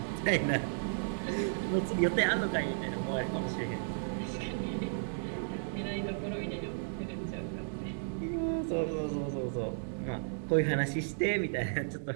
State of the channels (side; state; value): left; silent; digital silence